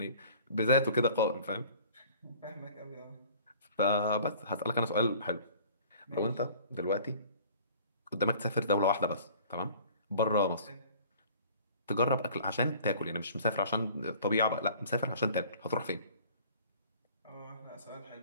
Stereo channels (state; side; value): inverted; both; correlation -0.49